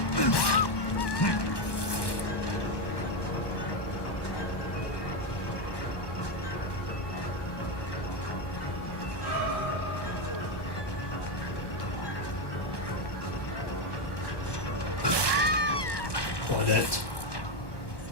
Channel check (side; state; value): right; late; 1.1 ms